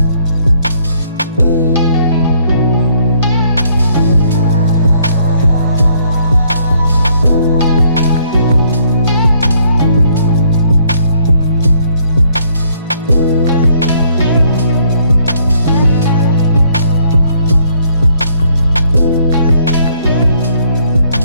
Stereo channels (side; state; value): both; inverted; correlation -0.67